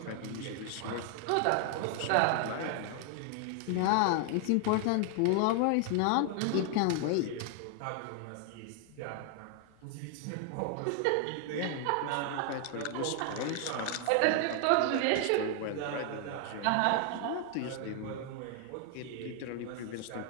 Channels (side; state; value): both; different; correlation 0.00